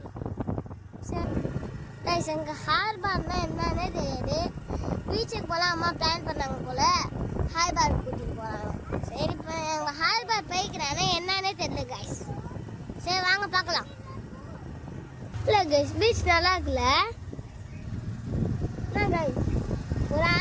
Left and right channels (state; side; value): identical; both; correlation 1.00